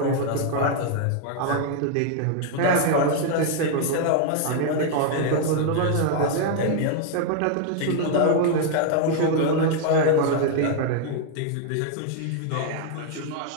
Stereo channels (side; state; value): both; different; correlation 0.00